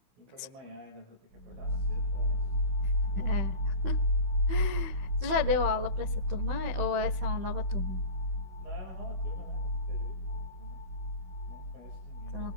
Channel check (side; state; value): left; late; 16 ms